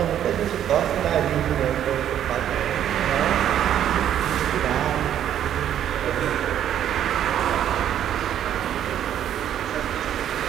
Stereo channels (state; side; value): quieter; left; 10.4 dB